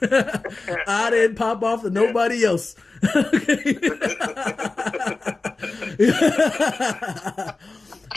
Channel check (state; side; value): quieter; right; 3.5 dB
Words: I didn't pop off to nobody else.